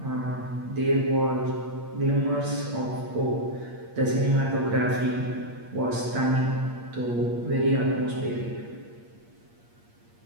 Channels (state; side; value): late; left; 8.6 ms